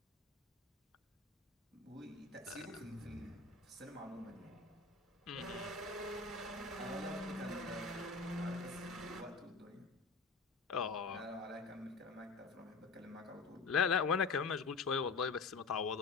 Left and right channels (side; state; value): right; quieter; 4.3 dB